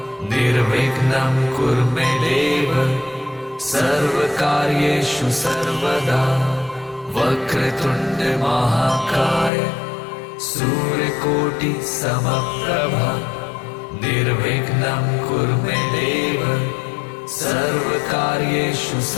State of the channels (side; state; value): right; drops out; at 9.5 s